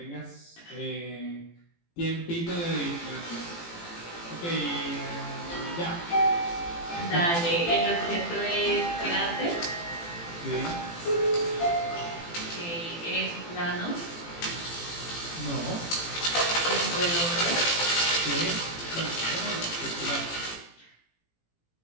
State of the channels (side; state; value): right; late; 18 ms